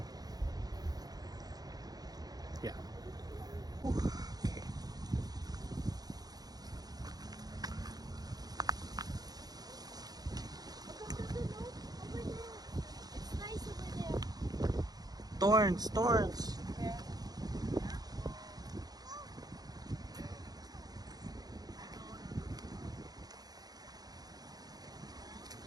Yeah. Okay. It's nice over there. Thorns, thorns.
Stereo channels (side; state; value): left; late; 0.19 ms